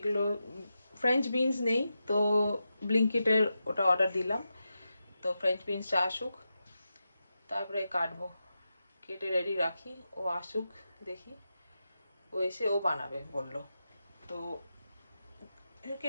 ফ্রেঞ্চ বিনস নেই, তো ব্লিঙ্কিটের ওটা অর্ডার দিলাম, তো ফ্রেঞ্চ বিনসটা আসুক, তারপরে কাটবো, কেটে রেডি রাখি, ও আসুক দেখি, ও এসে ও বানাবে বললো। তো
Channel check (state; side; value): inverted; both; correlation -0.89